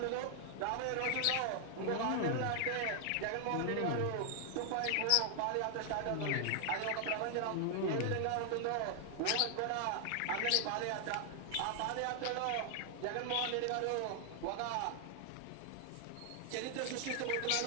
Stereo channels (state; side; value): different; both; correlation 0.00